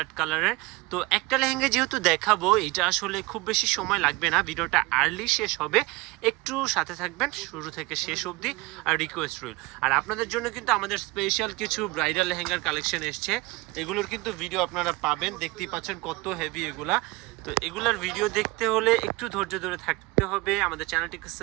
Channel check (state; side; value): quieter; left; 22.4 dB